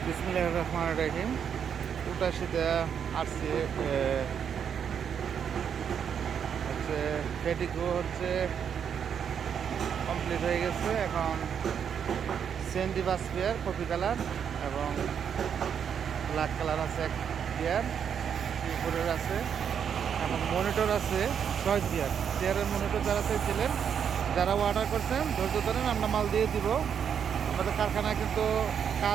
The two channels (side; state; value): left; quieter; 7.8 dB